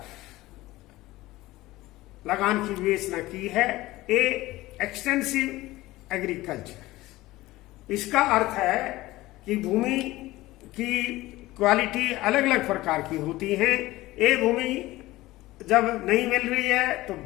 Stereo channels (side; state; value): right; quieter; 18.1 dB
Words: लगान की विवेचना की है। ए एक्सटेंसिव एग्रीकल्चर, इसका अर्थ है कि भूमि की क्वालिटी अलग अलग प्रकार की होती है। ए भूमि जब नहीं मिल रही है तो